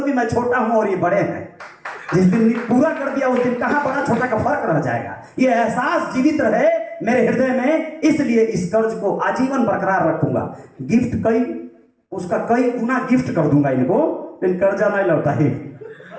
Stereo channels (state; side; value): identical; both; correlation 1.00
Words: कि मैं छोटा हूं और ये बड़े हैं। जिस दिन पूरा कर दिया उस दिन कहां बड़ा छोटा का फर्क रह जाएगा, ये एहसास जीवित रहे मेरे हृदय में, इसलिए इस कर्ज को आजीवन बरकरार रखूंगा। गिफ्ट उसका कई गुना गिफ्ट कर दूंगा इनको, लेकिन कर्जा नहीं लौटा ही,